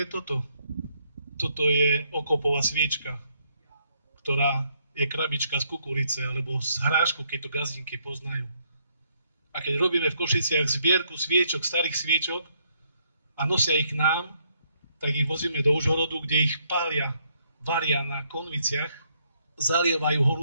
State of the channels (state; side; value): inverted; both; correlation -0.72